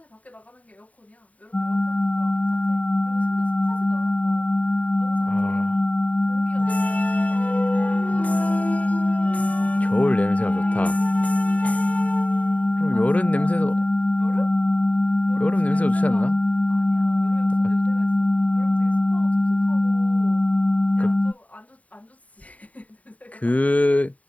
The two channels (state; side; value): late; right; 0.069 ms